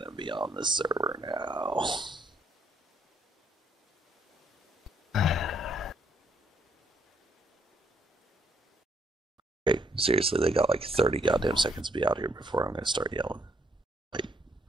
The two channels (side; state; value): both; normal; correlation 0.69